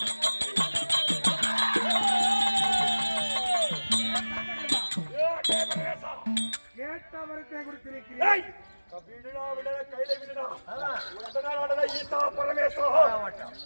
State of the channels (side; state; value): both; inverted; correlation -1.00